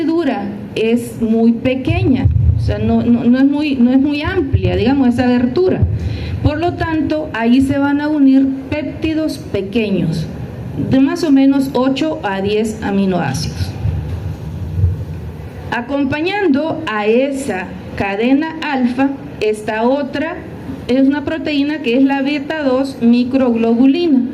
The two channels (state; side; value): identical; both; correlation 1.00